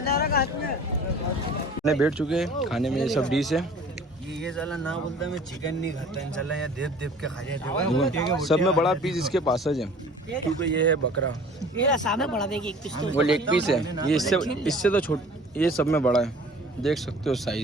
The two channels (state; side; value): normal; both; correlation 0.47